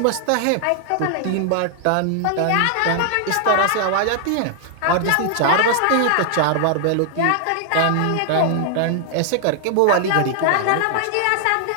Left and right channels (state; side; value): different; both; correlation 0.00